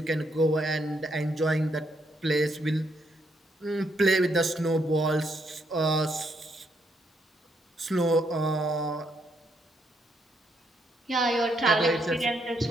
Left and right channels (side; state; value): both; normal; correlation 0.75